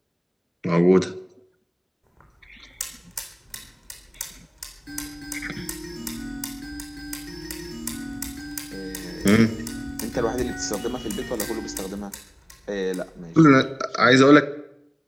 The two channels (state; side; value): identical; both; correlation 1.00